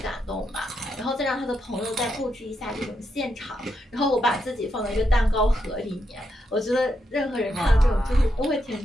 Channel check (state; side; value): normal; both; correlation 0.82